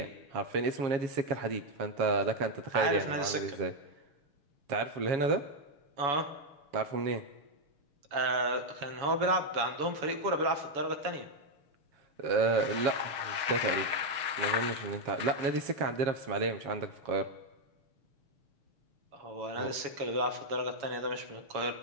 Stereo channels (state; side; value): late; left; 7.1 ms